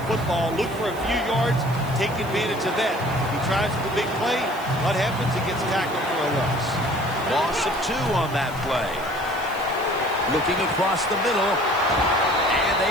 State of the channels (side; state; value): right; noise; hiss, 19 dB below the sound